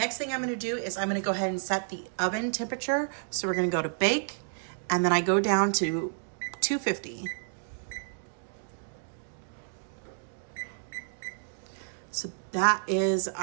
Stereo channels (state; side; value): silent; left; digital silence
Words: thing I'm gonna do is I'm gonna go ahead and set the oven temperature. So we're gonna go to bake and then I go down to 250. So that is